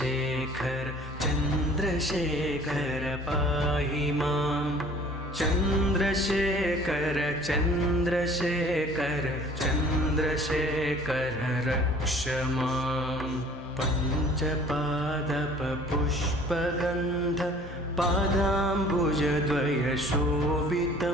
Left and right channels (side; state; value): both; normal; correlation 0.50